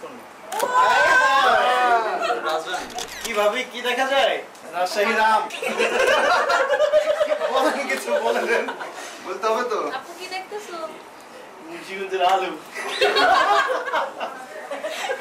কি ভাবি, কি দেখা যায়? রাজশাহী রাম। বলেন কিছু, বলেন, বলতে হবে তো। আপু কি দেখতেছো? মুন্সিগঞ্জের আলু।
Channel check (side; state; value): both; identical; correlation 1.00